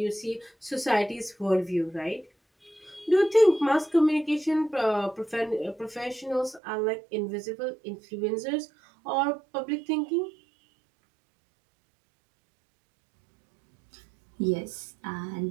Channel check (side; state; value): left; drops out; at 6.6 s